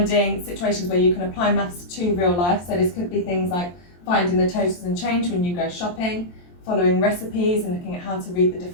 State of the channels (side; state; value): right; late; 23 ms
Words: situations where you can apply maths to real life, so this could be things like finding the totals and change when you go shopping, following recipes and looking at how to read the